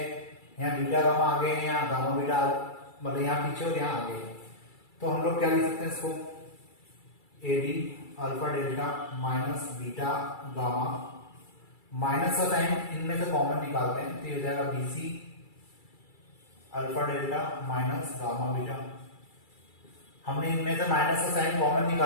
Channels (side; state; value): right; late; 2.3 ms